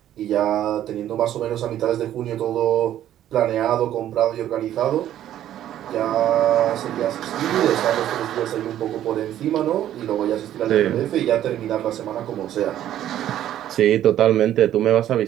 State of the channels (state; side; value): quieter; left; 11.8 dB